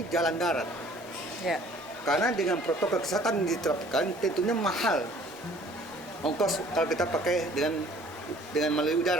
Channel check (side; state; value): both; normal; correlation 0.54